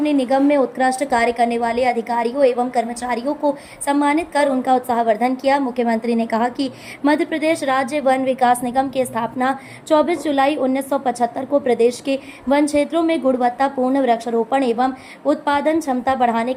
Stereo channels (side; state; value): both; identical; correlation 1.00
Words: ने निगम में उत्कृष्ट कार्य करने वाले अधिकारियों एवं कर्मचारियों को सम्मानित कर उनका उत्साहवर्धन किया। मुख्यमंत्री ने कहा कि मध्य प्रदेश राज्य वन विकास निगम की स्थापना 24 जुलाई 1975 को प्रदेश के वन क्षेत्रों में गुणवत्तापूर्ण वृक्षारोपण एवं उत्पादन क्षमता बढ़ाने